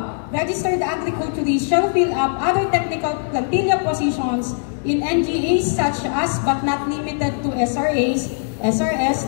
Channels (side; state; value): right; silent; digital silence